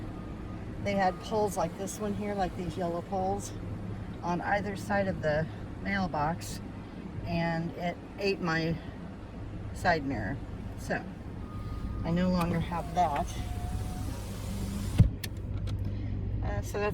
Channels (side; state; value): both; identical; correlation 1.00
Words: they had poles like this one here, like these yellow poles on either side of the mailbox, and it ate my side mirror, so I no longer have that. So